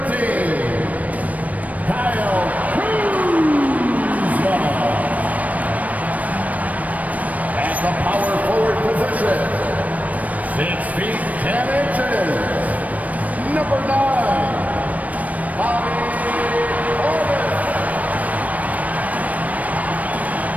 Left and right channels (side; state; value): left; late; 0.071 ms